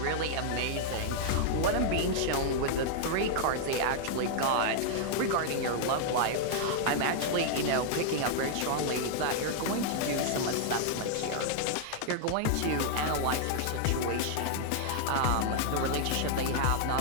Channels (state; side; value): different; both; correlation -0.01